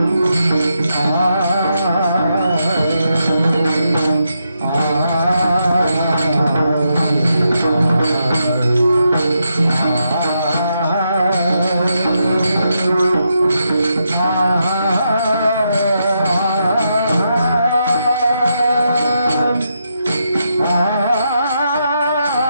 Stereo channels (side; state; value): both; inverted; correlation -0.82